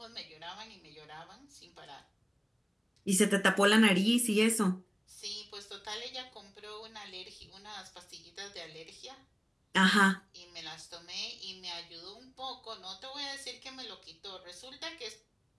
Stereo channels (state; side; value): identical; both; correlation 1.00